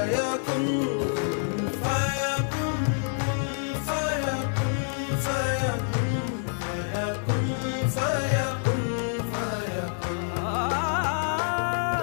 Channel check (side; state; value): right; silent; 60 dB below the other